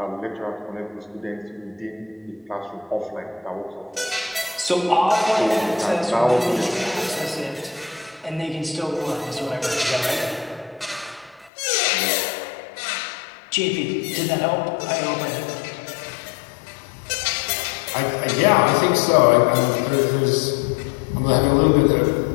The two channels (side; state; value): right; drops out; at 11.5 s